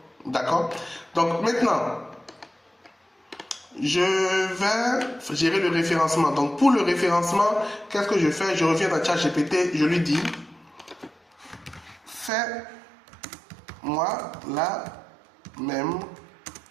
D'accord? Donc maintenant, je vais gérer le référencement. Donc pour le référencement, qu'est-ce que je fais? Je reviens dans ChatGPT, je lui dis, fais-moi la même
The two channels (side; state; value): left; drops out; at 12.3 s